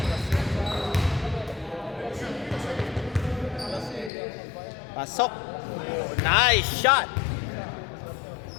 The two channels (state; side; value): drops out; right; at 4.1 s